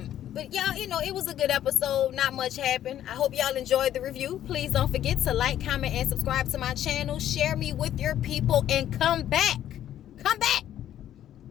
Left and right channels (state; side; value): quieter; right; 11.5 dB